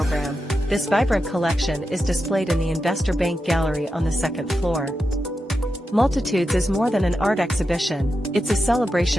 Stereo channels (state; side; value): normal; both; correlation 0.89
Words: this vibrant collection is displayed in the Investor Bank Gallery on the second floor. Multitudes is more than an art exhibition, it's a